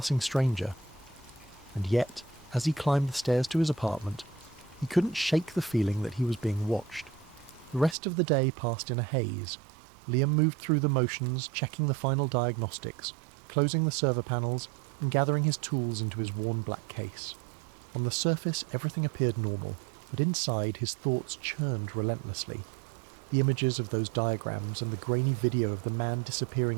stranger. And yet, as he climbed the stairs to his apartment, He couldn't shake the feeling that he was being watched. The rest of the day passed in a haze. Liam moved through the motions, checking the final diagnostics, closing the server panels, and gathering his tools into his worn black case. On the surface, everything appeared normal, but inside his thoughts churned relentlessly. The images of those diagrams and the grainy video of the man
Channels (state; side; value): drops out; left; at 8.0 s